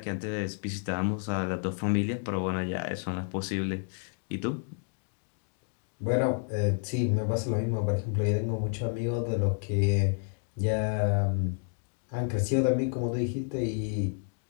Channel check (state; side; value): silent; right; 58 dB below the other